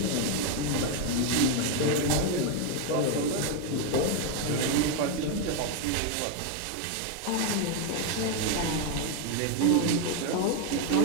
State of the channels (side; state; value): both; different; correlation 0.01